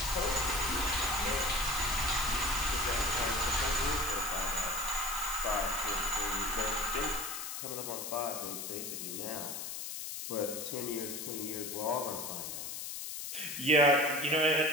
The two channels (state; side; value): noise; left; hiss, 6 dB below the sound